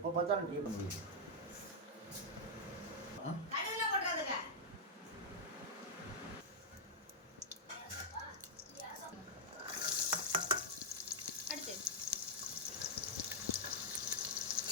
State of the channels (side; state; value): both; normal; correlation -0.06